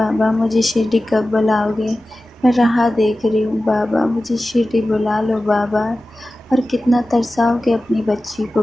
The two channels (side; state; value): both; normal; correlation 0.95